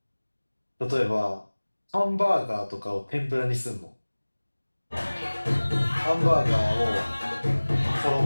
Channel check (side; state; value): both; inverted; correlation -1.00